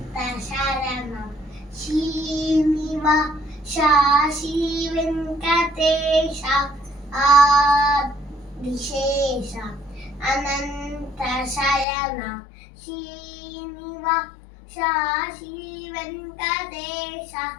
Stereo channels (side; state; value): right; drops out; at 11.9 s